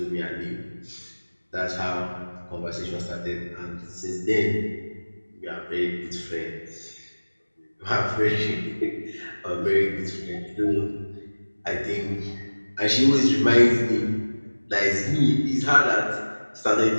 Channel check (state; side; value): inverted; both; correlation -1.00